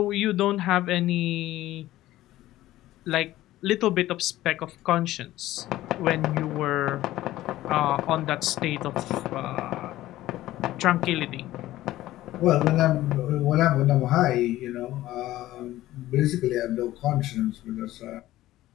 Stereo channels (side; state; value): right; quieter; 15.4 dB